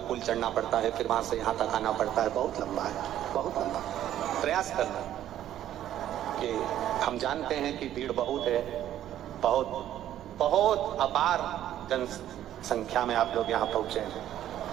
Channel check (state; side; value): quieter; left; 11.9 dB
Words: पुल चढ़ना पड़ता है, फिर वहाँ से यहाँ तक आना पड़ता है, बहुत लंबा है, बहुत लंबा। प्रयास करना कि हम जानते हैं कि भीड़ बहुत है, बहुत बहुत अपार जनसंख्या में आप लोग यहाँ पहुँचे।